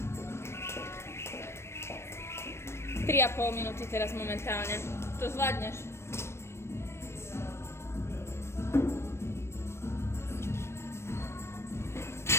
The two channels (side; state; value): right; late; 0.13 ms